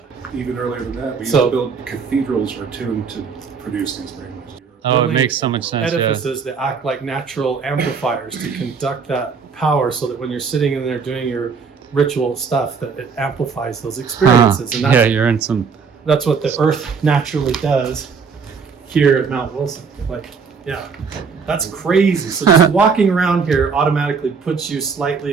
Even earlier than that, we used So- to build cathedrals are tuned to produce these brainwaves. Oh, it Building makes so much sense. Yeah. Edifices that act like natural amplifiers to conduct that power, so that when you're sitting in there doing your ritual stuff, that it amplifies those experiences. And Yeah, you're in some. that's what the Earth naturally does here at Mount Wilson. Like, yeah, that's crazy. So just walking around here automatically puts you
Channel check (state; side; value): quieter; left; 5.6 dB